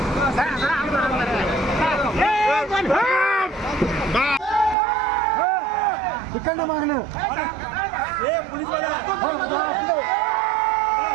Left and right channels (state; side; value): drops out; left; at 4.8 s